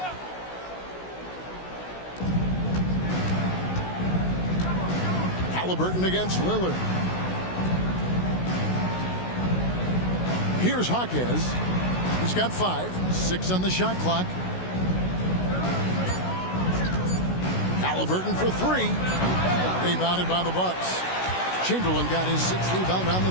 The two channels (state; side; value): late; right; 16 ms